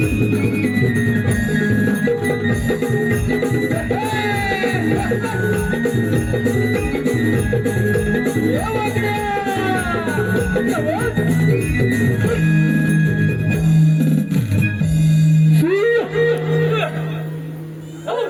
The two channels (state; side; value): identical; both; correlation 1.00